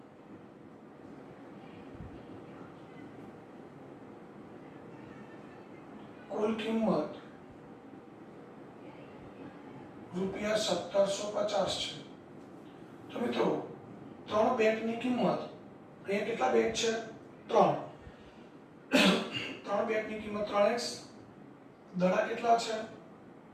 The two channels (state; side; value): identical; both; correlation 1.00